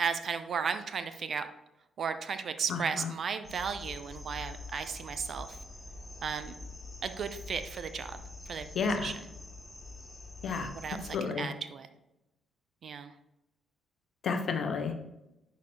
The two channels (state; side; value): normal; both; correlation 0.71